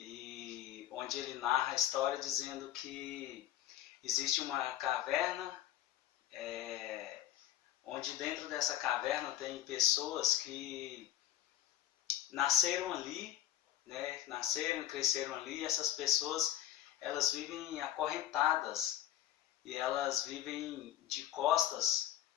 onde ele narra a história dizendo que existe uma caverna, onde dentro dessa caverna tem pessoas que nasceram ali, né, nasceram e cresceram ali. Essas pessoas, elas vivem acorrentadas e elas vivem de costas,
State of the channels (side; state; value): right; quieter; 12.4 dB